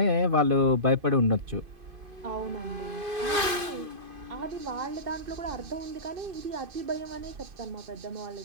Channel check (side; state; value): left; late; 2.5 ms